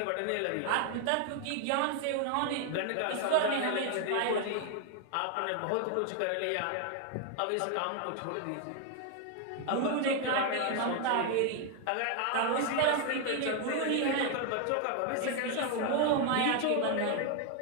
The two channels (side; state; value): both; different; correlation 0.00